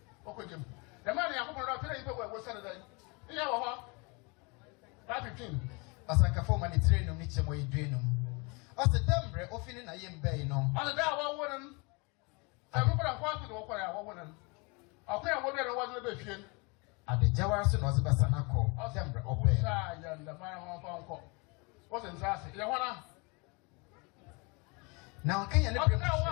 okogem the man ya kwa na pele ibe we say that iya wo ho 15 asanka fo man train no ni chemo yedrenum ase dembre ofini na yembe no ase da wo wonan amu bra kwa tu do kwa ya wo wonan akwa wo bia no wo be fie ade jawara so no zibasa na ko dembre obe sa ya nda mara ho fa nko wo se nsase ya hona now can you let me know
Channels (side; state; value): right; quieter; 29.7 dB